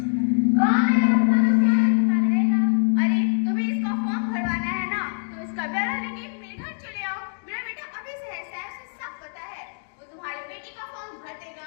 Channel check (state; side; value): silent; right; digital silence